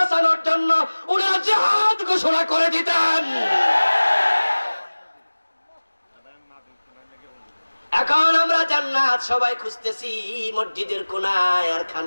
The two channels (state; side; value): inverted; both; correlation -1.00